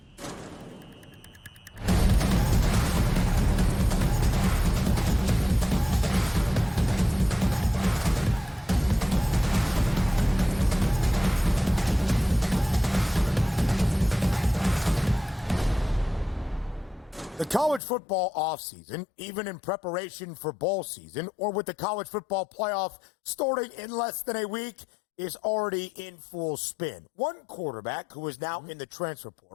The college football offseason, even in preparation for bowl season, or with the college football playoff starting in less than a week, is already in full spin. One quarterback who is now in the transfer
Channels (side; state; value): right; drops out; at 17.8 s